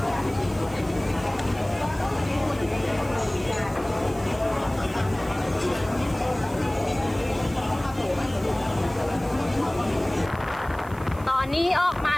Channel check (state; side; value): noise; right; hiss, 22 dB below the sound